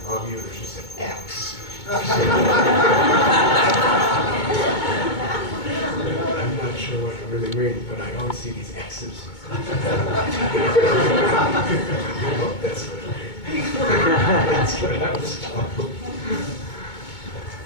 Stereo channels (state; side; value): late; right; 2.2 ms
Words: love you, there's just an X. I'm not sure what it really means, but I always see these X's. I hope that's what it means. That's what I was told.